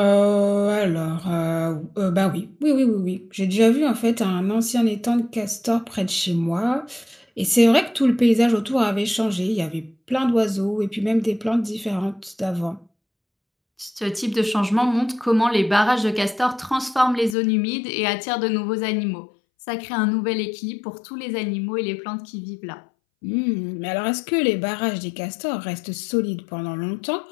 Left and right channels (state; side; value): drops out; right; at 17.4 s